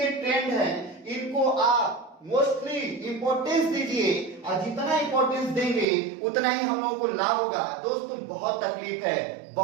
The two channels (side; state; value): left; drops out; at 5.9 s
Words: ट्रेंड हैं, इनको आप मोस्टली इंपॉर्टेंस दीजिए और जितना इंपॉर्टेंस देंगे उतना ही हम लोगों को लाभ होगा। दोस्तों, बहुत तकलीफ है,